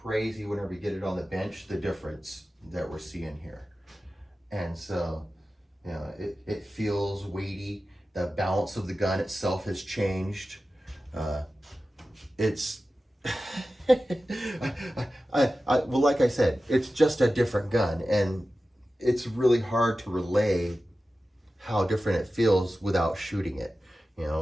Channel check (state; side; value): normal; both; correlation 0.94